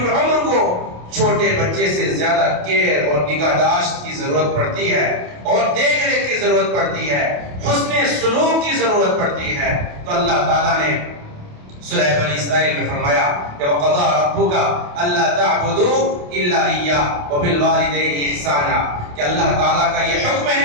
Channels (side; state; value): left; late; 28 ms